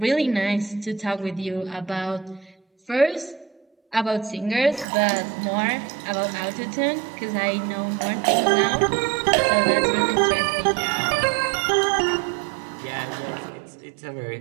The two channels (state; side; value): drops out; left; at 4.9 s